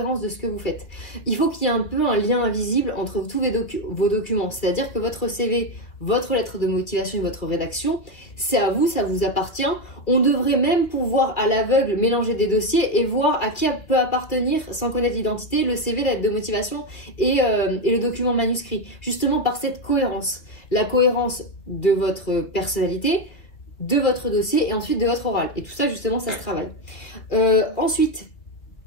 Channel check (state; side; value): late; right; 2.3 ms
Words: de ce que vous faites. Il faut qu'il y ait un peu un lien invisible entre tous vos documents, c'est-à-dire que votre CV, votre lettre de motivation et votre rédaction, c'est à vous, ça vous appartient. On devrait même pouvoir à l'aveugle mélanger des dossiers et voir à qui peut appartenir, sans connaître l'identité, le CV, la lettre de motivation et le document manuscrit, justement par cette cohérence. La cohérence de votre personnalité, de votre dossier et ensuite de votre oral. Et tout ça, justement, ça se travaille. Ensuite,